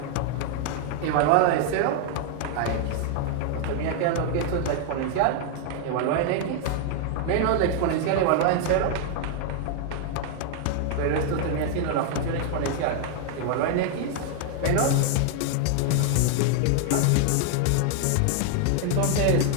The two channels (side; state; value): both; different; correlation 0.00